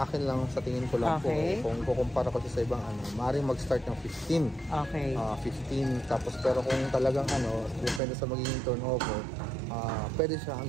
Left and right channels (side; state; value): left; drops out; at 8.0 s